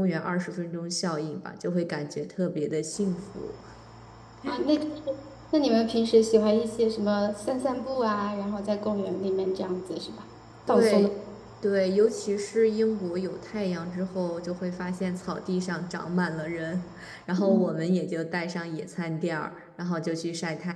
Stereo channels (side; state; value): both; identical; correlation 1.00